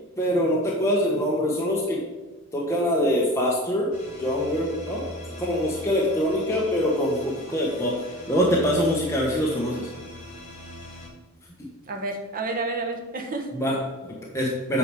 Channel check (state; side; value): normal; both; correlation 0.36